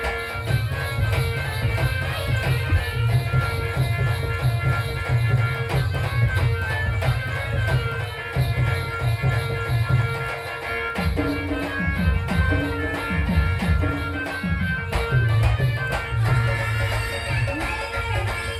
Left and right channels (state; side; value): identical; both; correlation 1.00